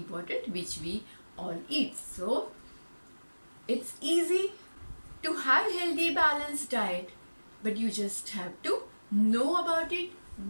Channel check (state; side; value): inverted; both; correlation -1.00